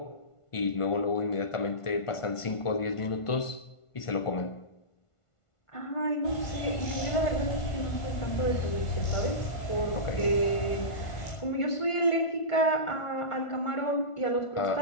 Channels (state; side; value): late; right; 1.5 ms